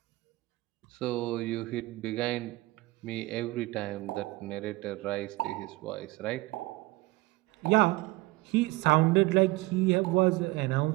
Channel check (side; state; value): left; quieter; 20.8 dB